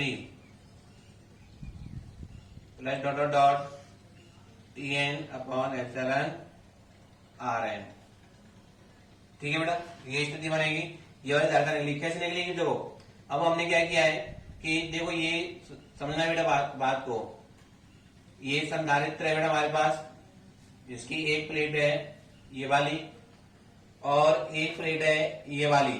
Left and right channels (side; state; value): both; identical; correlation 1.00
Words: plus dot dot dot Tn upon epsilon Rn। ठीक है बेटा, ये स्थिति बनेगी। ये वाली धारणा कैसे निकलेगी, देखो अब हमने क्या किया है कि देखो ये समझना है बेटा बात को, ये संधारित्र है बेटा हमारे पास, जिसकी एक प्लेट है ये वाली और एक प्लेट है ये